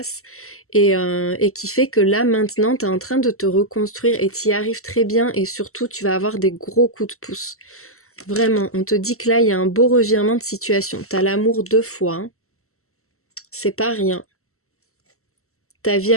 et qui fait que là, maintenant, tu es en train de te reconstruire et tu y arrives très bien et surtout, tu vas avoir des gros coups de pouce. Vraiment, on te dit que là, il y a un beau revirement de situation. Tu as l'amour 2 fois, hein. C'est pas rien. Ta vie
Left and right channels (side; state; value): right; late; 0.63 ms